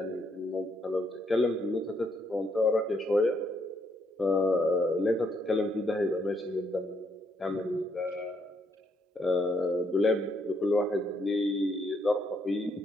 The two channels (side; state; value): both; normal; correlation 0.74